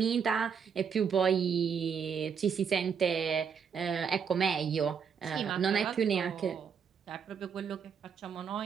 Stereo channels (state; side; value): quieter; left; 6.8 dB